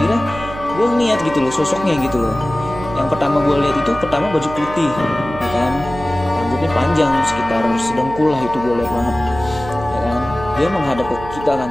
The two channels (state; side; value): noise; right; hum, 12 dB below the sound